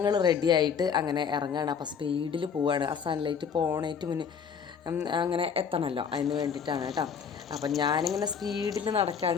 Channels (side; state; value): right; quieter; 6.8 dB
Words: റെഡി ആയിട്ട് അങ്ങനെ ഇറങ്ങുകയാണ്. അപ്പോൾ സ്പീഡിൽ പോവുകയാണ്. ആ സൺലൈറ്റ് പോണേറ്റ് മുന്നേ അങ്ങനെ എത്തണമല്ലോ, അതിന് വേണ്ടിയിട്ടാണ് കേട്ടോ. അപ്പം ഞാനിങ്ങനെ സ്പീഡിൽ